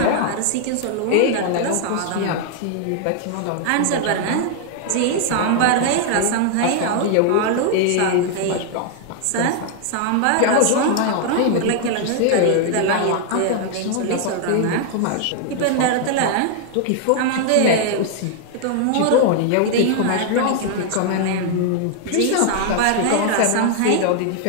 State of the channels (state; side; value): different; both; correlation 0.00